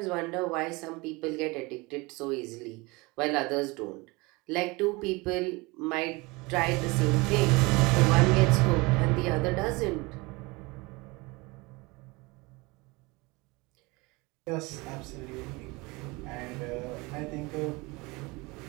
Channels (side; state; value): left; quieter; 24.9 dB